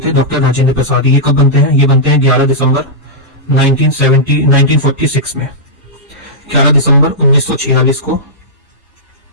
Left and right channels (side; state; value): both; normal; correlation -0.12